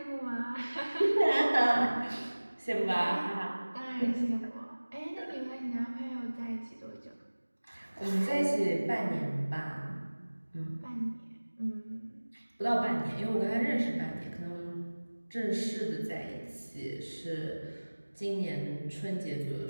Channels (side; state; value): both; inverted; correlation -1.00